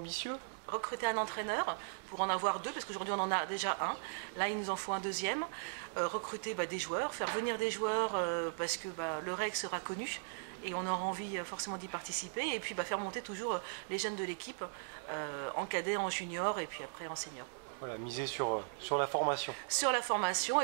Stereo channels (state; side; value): silent; left; digital silence